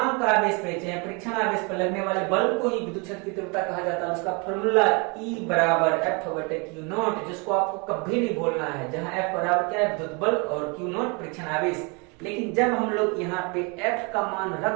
आवेश पे चाहे परीक्षण आवेश पर लगने वाले बल को ही विद्युत क्षेत्र की तीव्रता कहा जाता है। उसका फॉर्मूला E = F/Q0, जिसको आपको कभी नहीं भूलना है, जहां F बराबर क्या है, विद्युत बल, और Q0 परीक्षण आवेश। लेकिन जब हम लोग यहाँ पे F का मान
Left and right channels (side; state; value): left; quieter; 31.5 dB